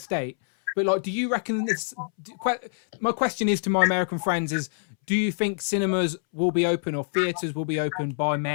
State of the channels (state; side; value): silent; right; 61 dB below the other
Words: but like, do you reckon this? My question is to my American friends: do you think cinemas will be open or theaters will be open by